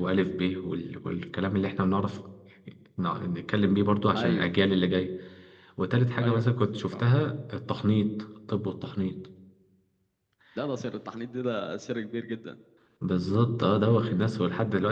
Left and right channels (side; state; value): both; identical; correlation 1.00